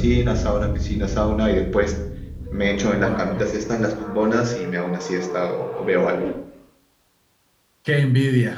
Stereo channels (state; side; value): identical; both; correlation 1.00